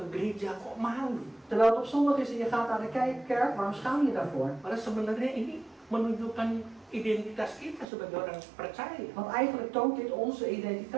gereja, kok malu? terwijl het op zondag is en je gaat naar de kerk, waarom schaam je daarvoor? Padahal sebenarnya ini menunjukkan identitas kita sebagai orang percaya. Want eigenlijk toont dit onze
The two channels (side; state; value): left; drops out; at 7.9 s